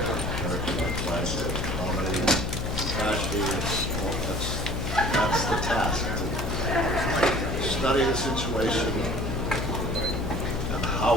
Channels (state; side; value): noise; left; hum, 3 dB below the sound